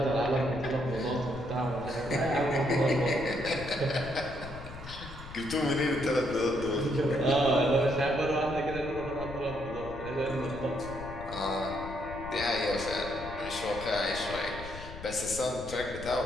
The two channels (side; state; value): left; noise; rumble, 13 dB below the sound